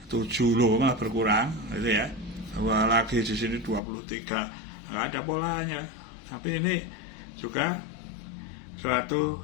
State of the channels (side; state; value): right; drops out; at 3.8 s